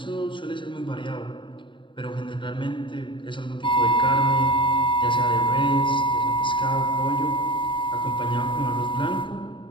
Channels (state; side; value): late; right; 0.24 ms